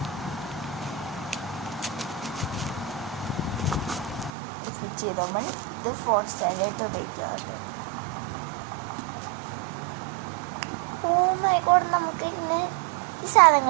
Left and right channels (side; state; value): left; drops out; at 4.3 s